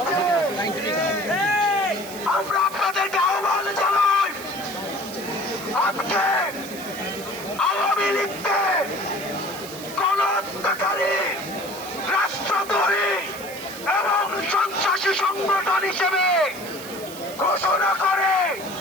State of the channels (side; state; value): right; noise; hiss, 15 dB below the sound